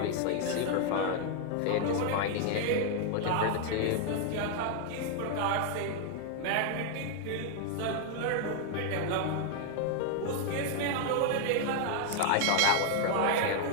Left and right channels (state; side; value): different; both; correlation 0.00